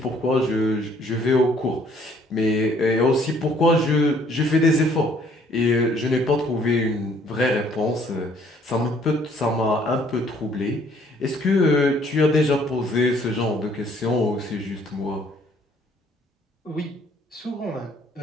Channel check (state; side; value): normal; both; correlation 0.62